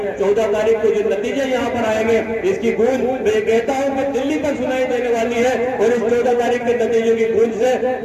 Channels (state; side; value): identical; both; correlation 1.00